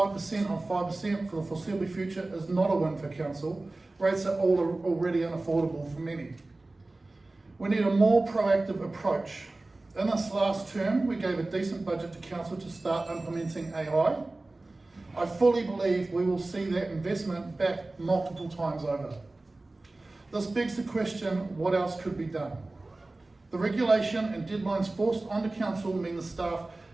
on 5% for the foreseeable future is not a win for council. Rates are already unaffordable for many. We need a more proactive approach. In this last term, we gave a decent budget to council to start implementing AI. I fully believe we will see that investment back multiple times over. This begs the question, what else could be done? The regulation and deadlines forced onto council mean the staff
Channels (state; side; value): quieter; left; 3.0 dB